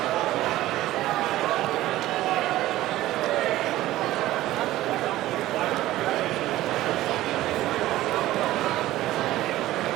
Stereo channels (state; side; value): quieter; left; 15.6 dB